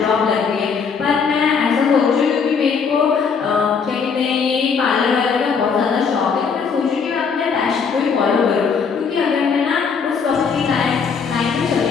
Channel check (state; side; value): quieter; right; 5.9 dB